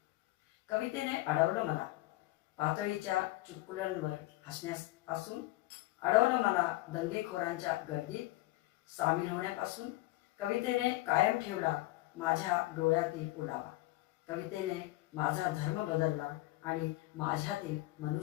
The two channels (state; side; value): quieter; right; 18.6 dB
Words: कवितेने अडवलं मला पातळीच्या चुटकुल्यांवर हसण्यापासून, अडवलं मला दंगेखोरांच्या गर्दीत सामील होण्यापासून. कवितेने कायम ठेवला माझ्या डोळ्यातील ओलावा. कवितेने माझा धर्म बदलला आणि माझ्यातील